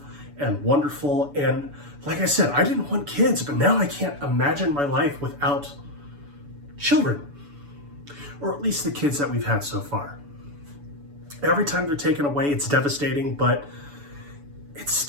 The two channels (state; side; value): late; left; 7.0 ms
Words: and wonderful. And like I said, I didn't want kids, but now I can't imagine my life without children, or at least the kids that we've had so far. Every time they're taken away, it's devastating, but it's